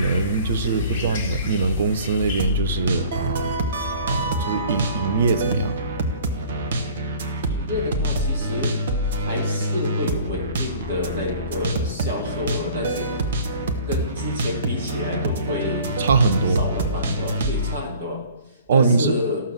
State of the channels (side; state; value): both; inverted; correlation -0.50